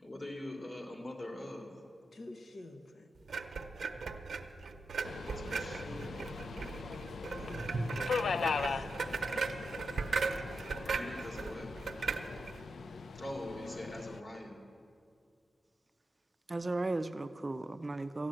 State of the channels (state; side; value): normal; both; correlation 0.87